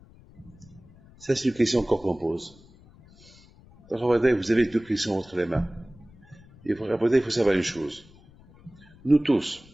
Ça, c'est une question encore qu'on pose. Donc, vous avez deux questions entre les mains. Il faut savoir une chose. Nous tous,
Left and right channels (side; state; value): left; noise; rumble, 25 dB below the sound